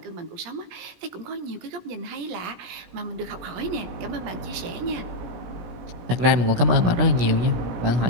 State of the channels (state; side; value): late; left; 17 ms